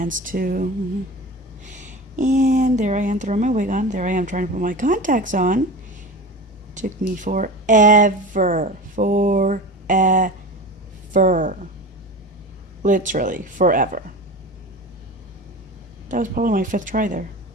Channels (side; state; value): both; normal; correlation 0.31